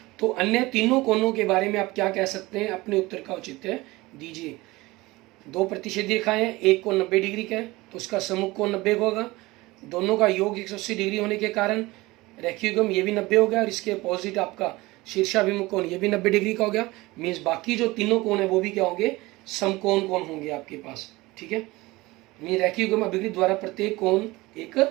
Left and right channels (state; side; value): quieter; left; 20.8 dB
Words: तो अन्य तीनों कोणों के बारे में आप क्या कह सकते हैं, अपने उत्तर का औचित्य दीजिए। दो प्रतिच्छेदी रेखाएं, एक कोण 90 डिग्री का है तो उसका सम्मुख कोण 90 होगा। दोनों का योग 180 डिग्री होने के कारण रेखीय युग्म ये भी 90 हो गया और इसके अपोजिट आपका शीर्षाभिमुख कोण ये भी 90 डिग्री का हो गया। मीन्स बाकी जो तीनों कोण है वो भी क्या होंगे, समकोण कोण होंगे आपके पास। ठीक है, मीन रेखीय युग्म अभिकृत द्वारा प्रत्येक कोण एक